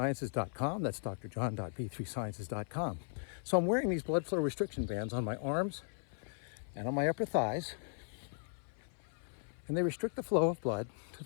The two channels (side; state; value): right; silent; 53 dB below the other